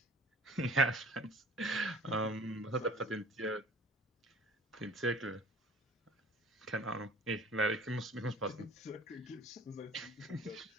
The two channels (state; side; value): normal; both; correlation 0.47